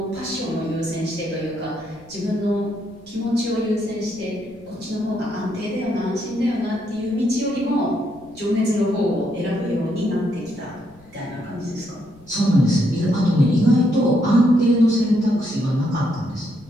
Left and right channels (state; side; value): noise; left; rumble, 26 dB below the sound